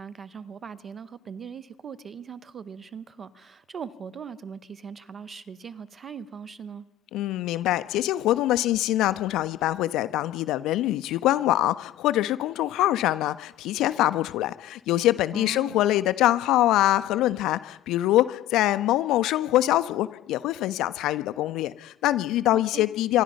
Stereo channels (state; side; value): quieter; right; 13.2 dB